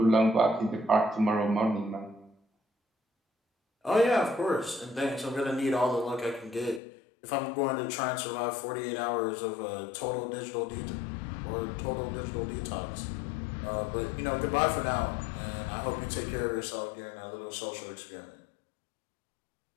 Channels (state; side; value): drops out; right; at 6.8 s